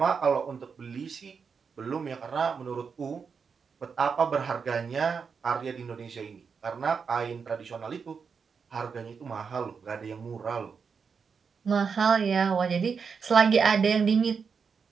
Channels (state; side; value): quieter; left; 5.8 dB